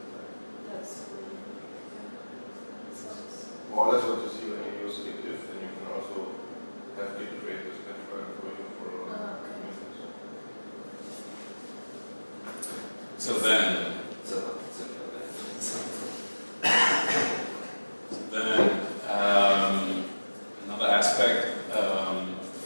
That's more or less what you see when you use git diff, and you can also have git create this patch file for you for okay. So then, so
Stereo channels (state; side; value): inverted; both; correlation -1.00